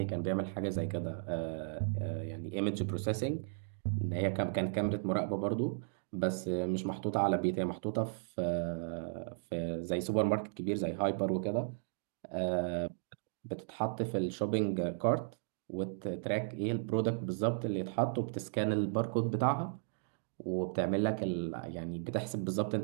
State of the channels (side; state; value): left; silent; digital silence